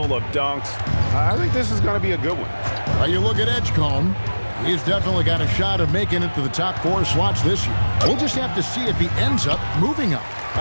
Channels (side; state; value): both; inverted; correlation -1.00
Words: of dunks. I think this is going to be a good one. Well, you look at Edgecombe. He's definitely got a shot of making it to the top 4 slots this year. We'll just have to see if he ends up moving up.